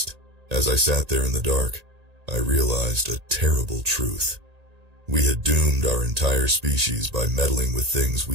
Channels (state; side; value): late; left; 1.8 ms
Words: As I sat there in the dark, I realized a terrible truth. We had doomed our entire species by meddling with things